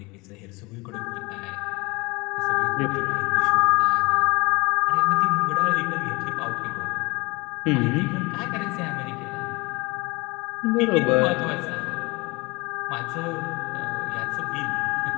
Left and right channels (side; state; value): right; quieter; 25.0 dB